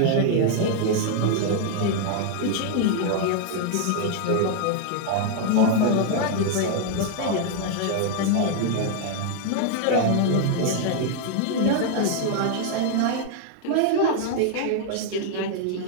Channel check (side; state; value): both; different; correlation 0.00